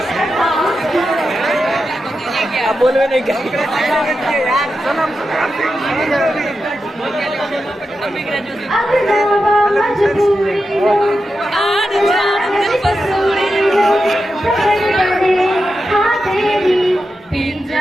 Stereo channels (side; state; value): both; normal; correlation 0.89